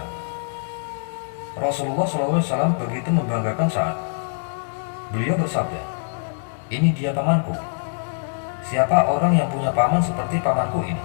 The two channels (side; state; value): right; silent; digital silence